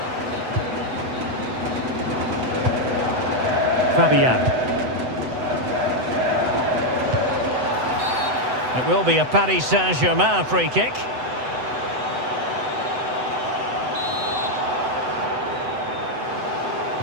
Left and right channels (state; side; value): late; left; 8.0 ms